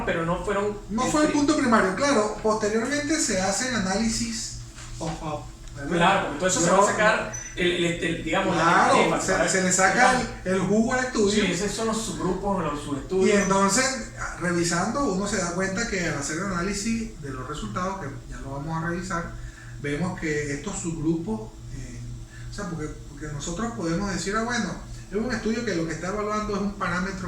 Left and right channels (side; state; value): both; identical; correlation 1.00